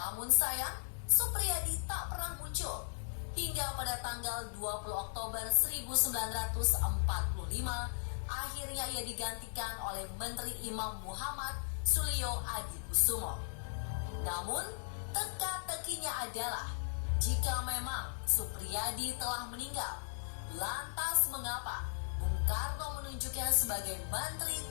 sayang, Supriyadi tak pernah muncul. Hingga pada tanggal 20 Oktober 1945, akhirnya ia digantikan oleh Menteri Imam Muhammad Suliyo Adikusumo. Namun, teka-tekinya adalah jika memang Supriyadi telah meninggal, lantas mengapa Bung Karno menunjuknya sebagai Menteri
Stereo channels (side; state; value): right; silent; 53 dB below the other